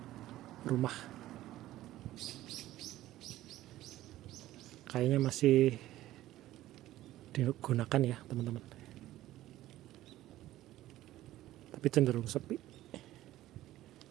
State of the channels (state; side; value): quieter; left; 15.0 dB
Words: rumah, kayaknya masih digunakan ya teman-teman, tapi cenderung sepi.